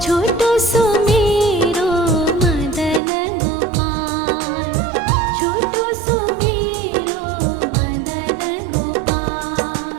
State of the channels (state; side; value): drops out; left; at 3.0 s